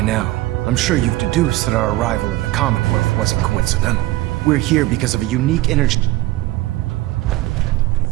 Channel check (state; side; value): quieter; left; 17.3 dB